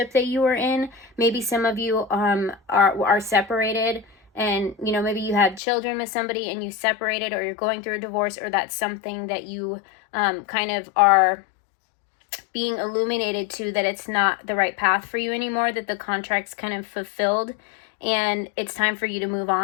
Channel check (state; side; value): drops out; right; at 5.6 s